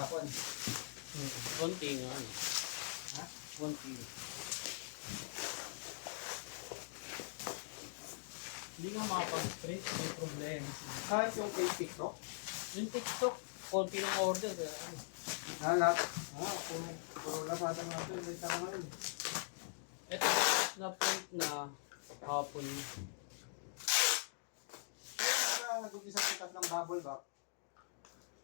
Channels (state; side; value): silent; right; digital silence